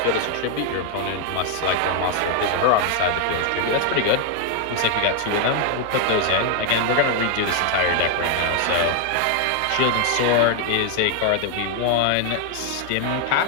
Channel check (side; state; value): both; different; correlation 0.00